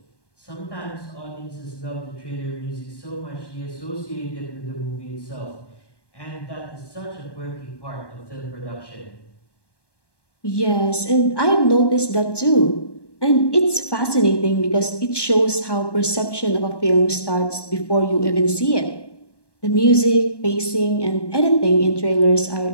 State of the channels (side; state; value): right; late; 1.1 ms